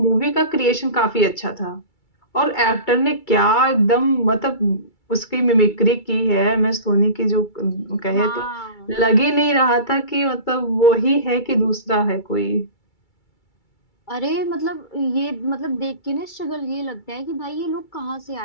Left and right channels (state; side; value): late; right; 2.3 ms